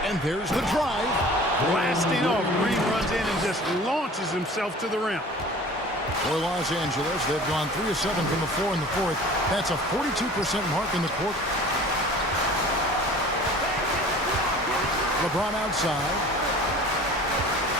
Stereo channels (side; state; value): both; normal; correlation 0.44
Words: And there's the drive. Blasting off, Green runs in and just launches himself to the rim. For Los Angeles, they've gone 3 of 7 from the floor in the fourth. That's a 42% mark in the quarter. LeBron outside.